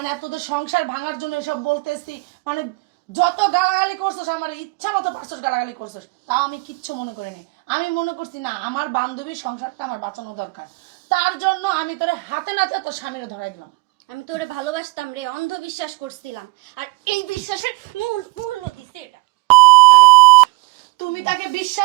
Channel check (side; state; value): left; quieter; 27.1 dB